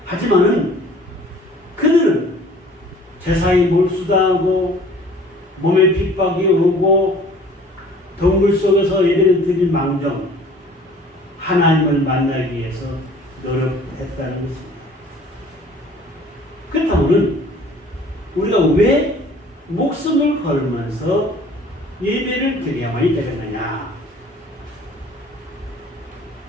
하지만은 그들은 제사에 몰수당하고 몸에 핍박이 오고 동굴 속에서 예배를 드릴 망정 하나님을 만나기 위해서 노력했다는 것입니다. 그렇다면 우리가 왜 목숨을 걸면서 예배를 드려야만이 되겠느냐?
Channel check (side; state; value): both; normal; correlation 0.51